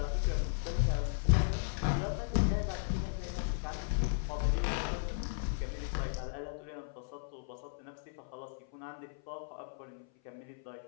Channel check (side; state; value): right; silent; 54 dB below the other